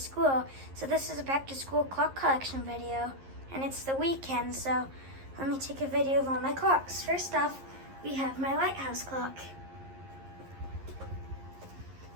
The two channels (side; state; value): left; late; 11 ms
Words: So this is a back to school clock collection video. And it's the weekend, so let me take a video of all my clocks. First off, we have my lighthouse clock.